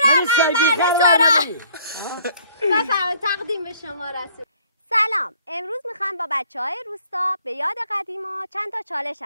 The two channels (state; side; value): inverted; both; correlation -0.59